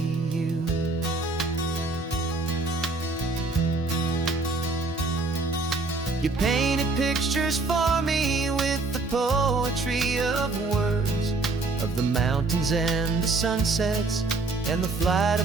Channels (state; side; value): quieter; left; 3.5 dB